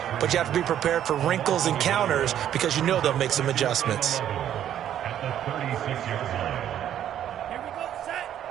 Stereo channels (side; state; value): left; quieter; 10.7 dB